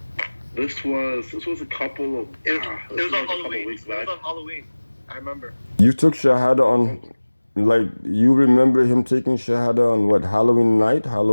This was a couple of It was this was on like a couple of Halloween. weeks It was back. on Halloween. I remember. You took shahada Oh, on, like, you remember him taking shahada on what, Halloween night,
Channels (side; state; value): both; inverted; correlation -1.00